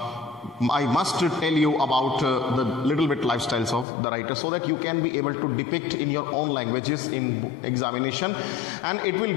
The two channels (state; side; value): drops out; right; at 3.9 s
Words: tell you about the little bit lifestyles of the writer, so that you can be able to depict in your own languages in examination, and it will